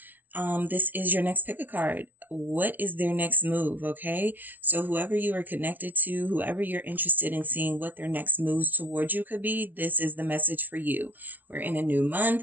This is your next pick a card. What is their next move? Okay. So whoever you are connected to, whoever you're interested in seeing what their next moves towards you could be, this is the message for you. We're in a new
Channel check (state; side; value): late; left; 0.082 ms